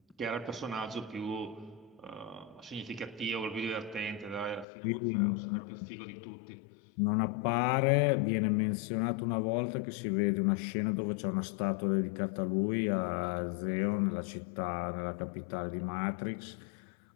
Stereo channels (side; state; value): right; drops out; at 4.7 s